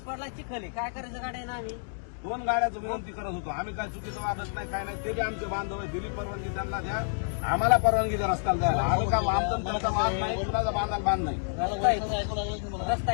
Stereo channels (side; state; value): right; silent; digital silence